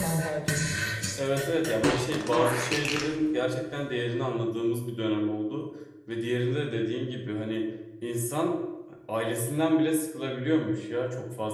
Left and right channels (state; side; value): identical; both; correlation 1.00